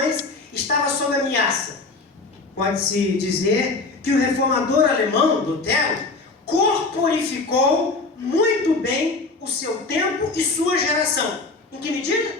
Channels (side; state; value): right; quieter; 3.6 dB